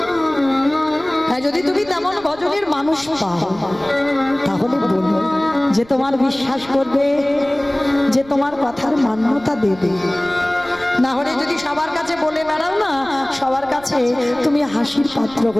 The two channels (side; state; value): right; noise; rumble, 22 dB below the sound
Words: হ্যাঁ, যদি তুমি তেমন ভজনের মানুষ পাও, তাহলে বলো, যে তোমার বিশ্বাস করবে, যে তোমার কথার মান্যতা দেবে। না হলে যদি সবার কাছে বলে বেড়াও না, সবার কাছে তুমি হাসির পাত্র